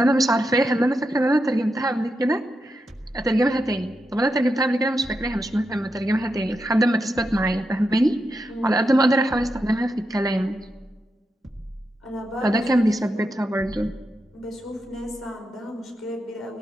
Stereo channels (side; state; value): both; normal; correlation 0.86